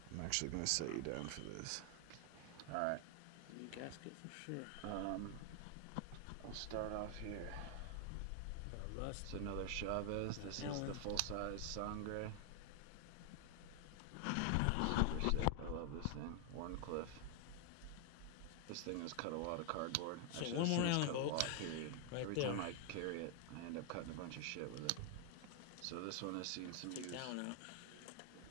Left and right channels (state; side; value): different; both; correlation 0.00